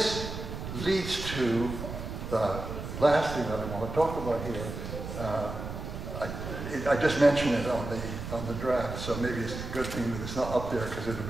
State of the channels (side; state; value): right; noise; rumble, 7 dB below the sound